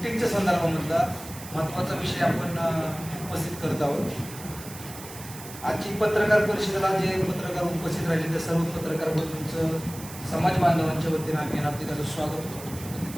संदर्भामधला महत्त्वाचा विषय आपण उपस्थित करत आहोत। आजची पत्रकार परिषदेला जे पत्रकार उपस्थित राहिले त्या सर्व पत्रकार बंधूंचं समाज बांधवांच्या वतीने आम्ही हार्दिक स्वागत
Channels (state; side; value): noise; right; hiss, 14 dB below the sound